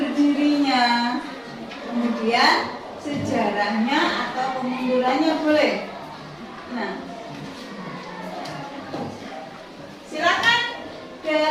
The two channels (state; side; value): identical; both; correlation 1.00